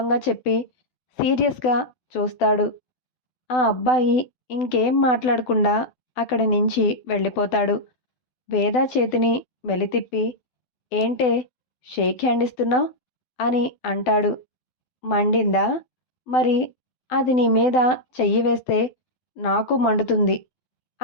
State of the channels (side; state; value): right; late; 12 ms